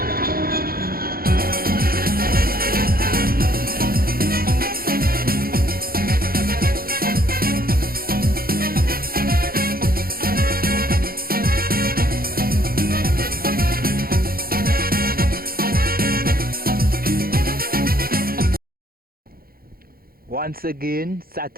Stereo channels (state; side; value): late; left; 0.43 ms